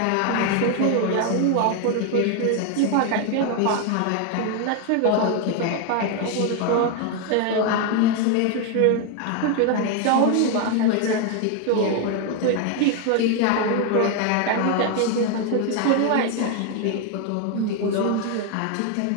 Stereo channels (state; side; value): different; both; correlation 0.01